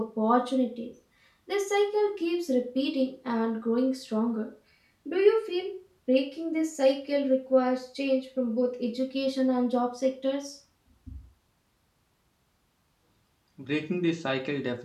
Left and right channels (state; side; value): identical; both; correlation 1.00